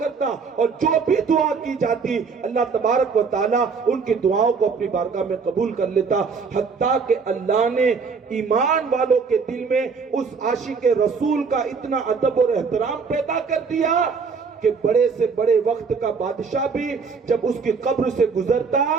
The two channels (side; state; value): left; quieter; 5.3 dB